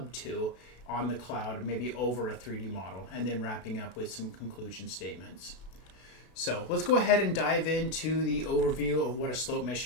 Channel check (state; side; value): late; right; 32 ms